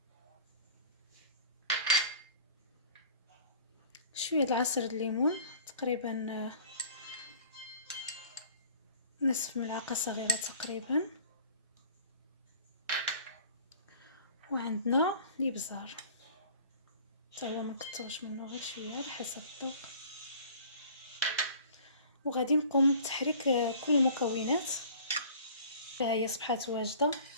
شويه د عصير الليمون تقريبا نصف ملعقه صغيره تقريبا، وعندنا الابزار حتى هو ما نكثروش منه غير شويه على حسب الذوق. وغادي نقوم بتحريك كل المكونات. ها هي صبحات واجده.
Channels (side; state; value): both; inverted; correlation -0.48